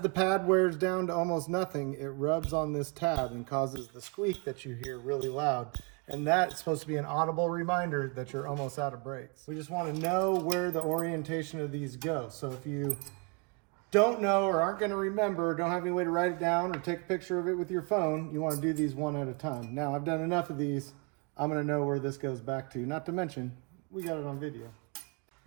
pad wears down to almost nothing, it rubs on this tab and causes the squeak that you hear really loud. And that's supposed to be an audible reminder that you're almost out of brakes. We just want to know where the orientation of these go. So if you don't know or aren't going to remember, don't have any way to write it down or take a picture of it with your phone, you want to do these one at a time. Now, I've done enough of these. I'm going to know where this goes back to. Not to mention, we got it on video.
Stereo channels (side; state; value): left; quieter; 33.6 dB